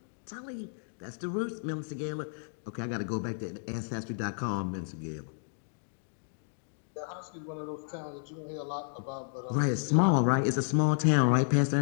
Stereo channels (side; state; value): right; silent; digital silence